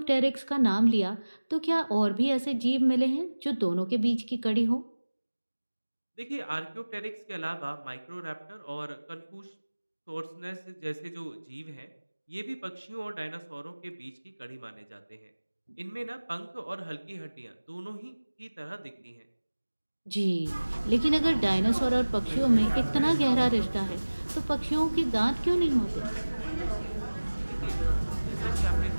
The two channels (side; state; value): both; inverted; correlation -1.00